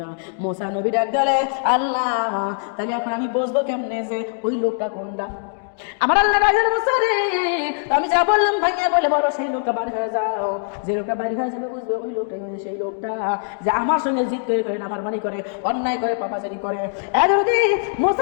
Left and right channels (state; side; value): silent; right; digital silence